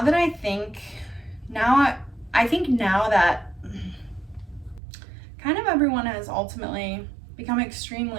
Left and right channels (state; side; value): drops out; left; at 4.8 s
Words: I think that kind of everyone has ultimately become